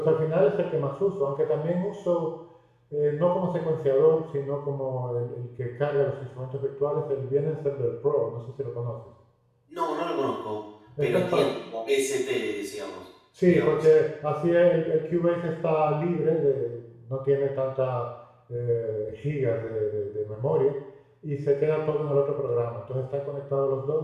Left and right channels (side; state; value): both; identical; correlation 1.00